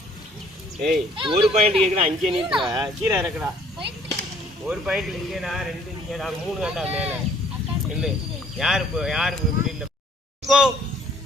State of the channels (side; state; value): both; normal; correlation 0.60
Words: ஏய் ஒரு பாயிண்ட் கேக்குறா, அங்கே நிறுத்துற, கீழே இறக்குறா. ஒரு பாயிண்ட் இங்கேடா, 2 இங்கேடா, 3 கண்டா மேல இல்ல. யாரு இப்படி இல்ல. கோ